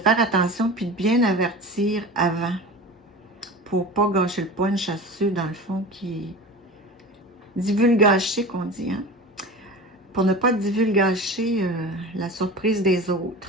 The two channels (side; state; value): both; normal; correlation 0.33